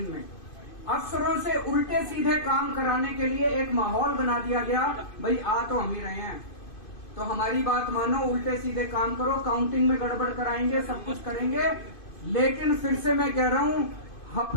में अफसरों से उल्टे सीधे काम कराने के लिए एक माहौल बना दिया गया। भाई आ तो हम ही रहे हैं तो हमारी बात मानो, उल्टे सीधे काम करो, काउंटिंग में गड़बड़ कराएंगे, सब कुछ करेंगे। लेकिन फिर से मैं कह रहा हूं,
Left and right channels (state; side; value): late; right; 2.5 ms